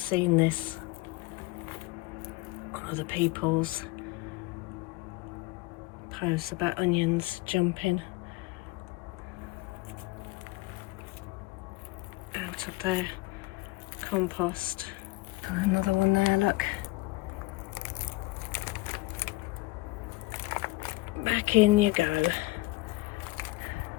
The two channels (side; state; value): right; quieter; 21.4 dB